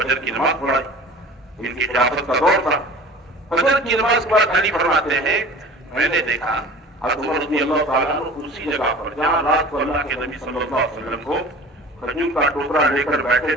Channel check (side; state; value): both; normal; correlation 0.41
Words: کی نماز پڑھائی. ان کی خلافت کا دور تھا. فجر کی نماز کے بعد علی فرماتے ہیں میں نے دیکھا حضرت عمر رضی اللہ تعالیٰ عنہ اسی جگہ پر جہاں رات کو اللہ کے نبی صلی اللہ علیہ وسلم کو کھجور کا ٹوکرا لے کر بیٹھے